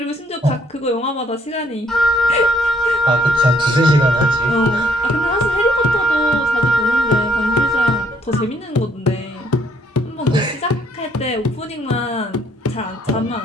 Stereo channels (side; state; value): both; normal; correlation 0.67